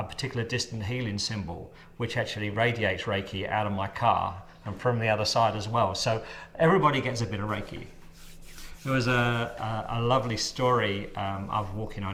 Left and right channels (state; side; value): identical; both; correlation 1.00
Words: particular distant healing symbol, which actually radiates Reiki out of my car and from the other side as well. So everybody gets a bit of Reiki. There was a lovely story. I was walking